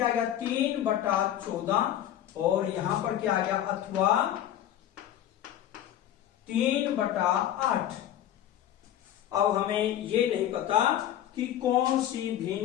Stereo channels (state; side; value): quieter; right; 11.5 dB